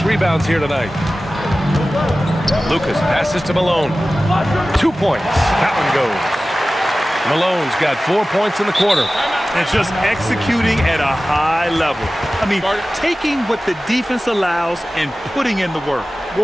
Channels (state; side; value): normal; both; correlation 0.96